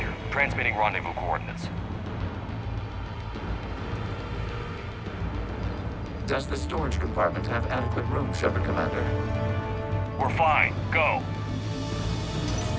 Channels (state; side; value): identical; both; correlation 1.00